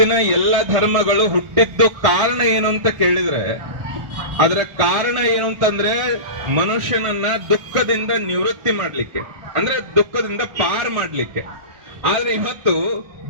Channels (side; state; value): left; late; 1.2 ms